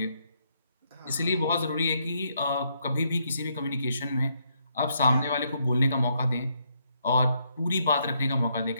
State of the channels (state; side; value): inverted; both; correlation -0.75